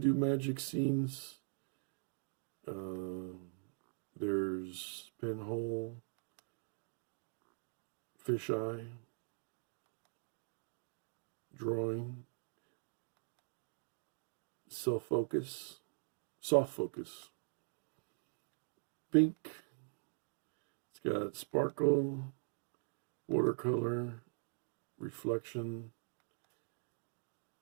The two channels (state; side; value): silent; left; digital silence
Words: do magic scenes. There's pinhole, fisheye, drawing, self-focus, soft focus, pink. It's got sparkle, watercolor, reflection,